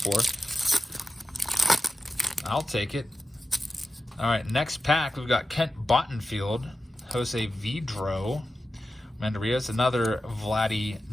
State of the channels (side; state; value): both; normal; correlation 0.93